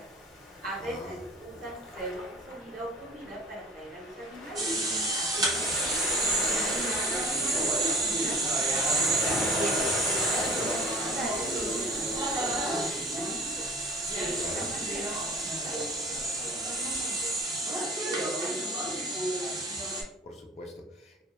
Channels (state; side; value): normal; both; correlation 0.43